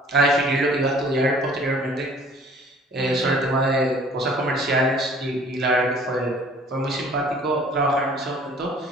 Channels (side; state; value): both; normal; correlation 0.53